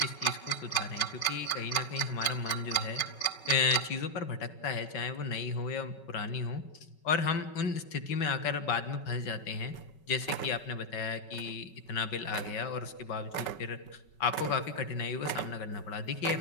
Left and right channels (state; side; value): late; right; 5.3 ms